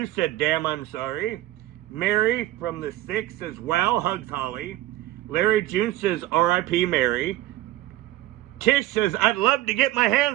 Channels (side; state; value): left; quieter; 15.9 dB